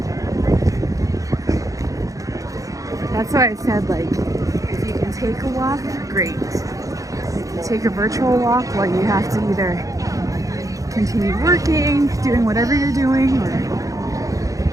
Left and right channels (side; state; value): left; late; 0.16 ms